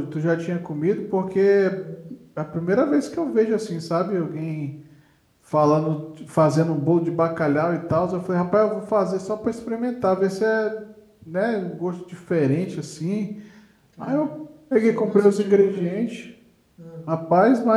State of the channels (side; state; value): both; identical; correlation 1.00